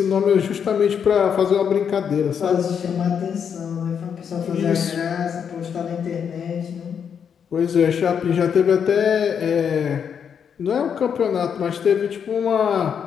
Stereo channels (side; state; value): right; quieter; 7.4 dB